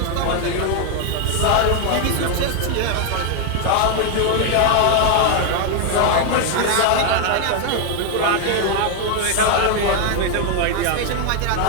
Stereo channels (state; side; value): different; both; correlation 0.00